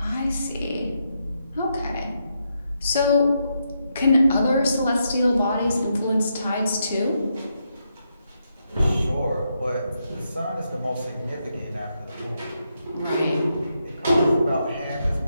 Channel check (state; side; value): inverted; both; correlation -0.81